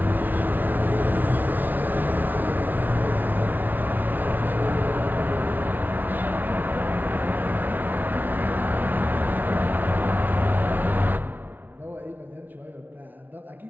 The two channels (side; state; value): left; late; 0.085 ms